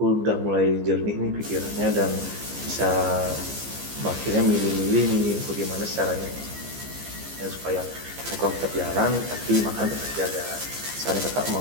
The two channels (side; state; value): left; late; 15 ms